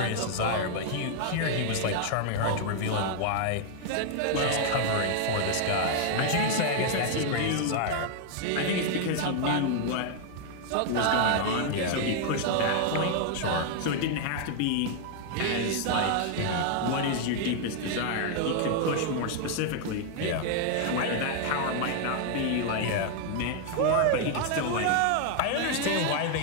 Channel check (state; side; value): different; both; correlation 0.00